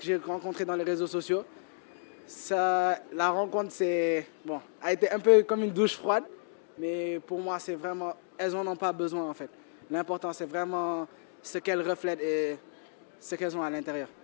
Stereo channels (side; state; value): right; silent; digital silence